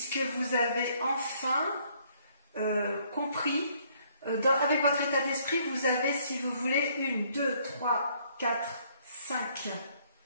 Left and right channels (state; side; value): inverted; both; correlation -0.65